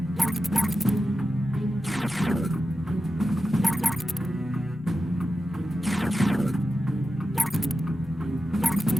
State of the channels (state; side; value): normal; both; correlation 0.92